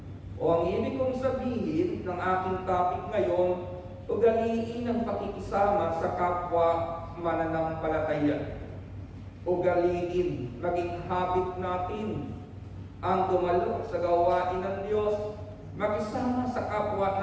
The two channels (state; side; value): identical; both; correlation 1.00